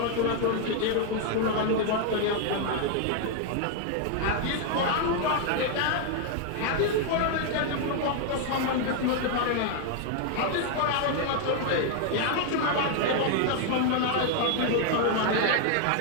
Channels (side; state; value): both; different; correlation 0.00